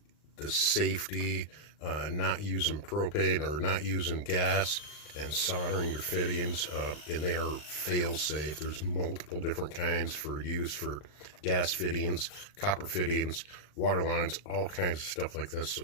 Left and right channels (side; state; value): right; late; 39 ms